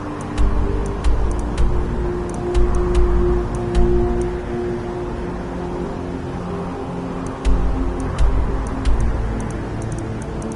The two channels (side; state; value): both; identical; correlation 1.00